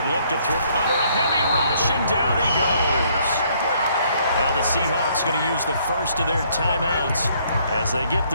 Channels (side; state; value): both; inverted; correlation -0.66